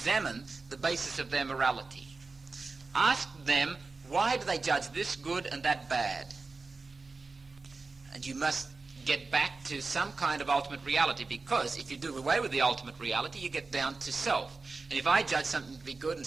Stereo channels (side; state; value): left; quieter; 3.9 dB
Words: the basis of their morality. Ask them, why do they judge this good and that bad? And you must get back to some kind of ultimate reality, because if you do away with the ultimate reality, you get down to self. And if I judge something to be good and